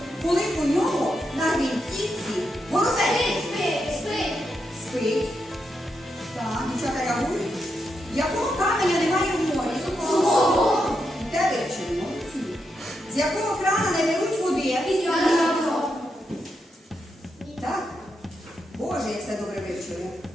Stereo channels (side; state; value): both; normal; correlation 0.84